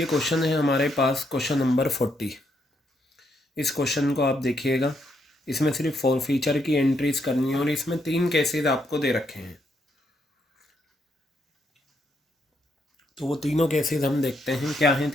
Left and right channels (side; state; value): both; normal; correlation 0.76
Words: क्वेश्चन है हमारे पास क्वेश्चन नंबर 40। इस क्वेश्चन को आप देखिएगा, इसमें सिर्फ फॉरफीचर की एंट्रीज करनी है और इसमें 3 केसेस आपको दे रखे हैं। तो वो तीनों केसेस हम देखते हैं, क्या हैं